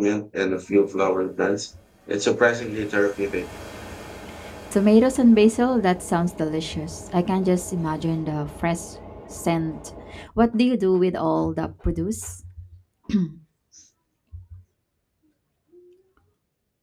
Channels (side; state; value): both; identical; correlation 1.00